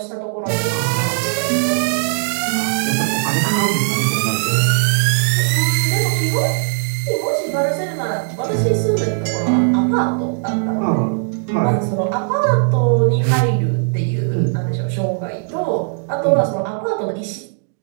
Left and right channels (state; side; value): silent; left; digital silence